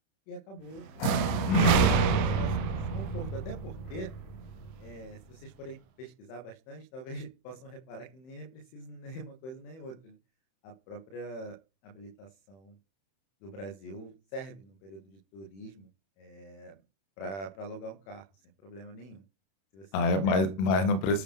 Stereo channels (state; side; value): late; right; 31 ms